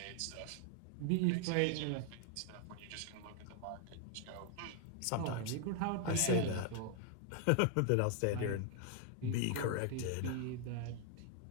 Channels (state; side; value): different; both; correlation 0.00